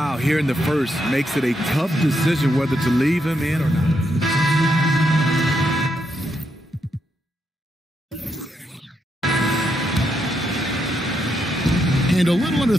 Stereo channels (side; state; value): both; normal; correlation 0.80